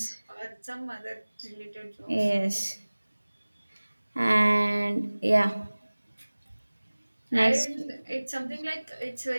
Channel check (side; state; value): both; inverted; correlation -1.00